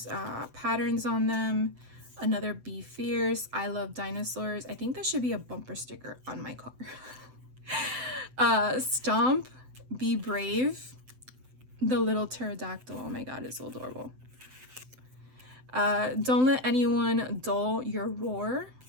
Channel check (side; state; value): left; late; 7.8 ms